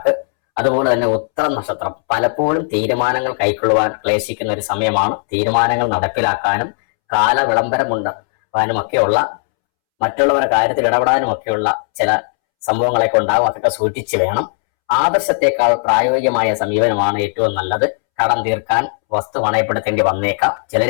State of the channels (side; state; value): right; silent; 69 dB below the other